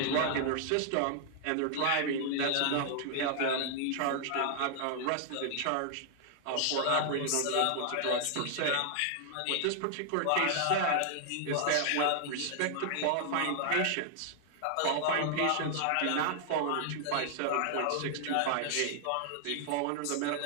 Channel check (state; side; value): different; both; correlation 0.00